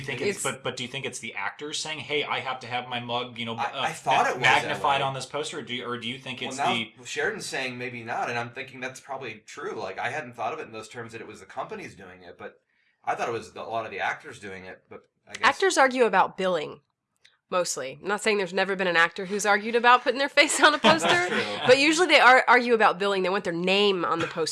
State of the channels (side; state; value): both; identical; correlation 1.00